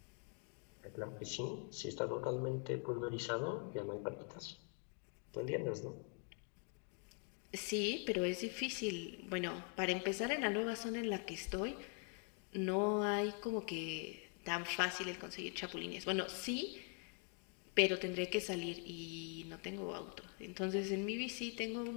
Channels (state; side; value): quieter; right; 37.9 dB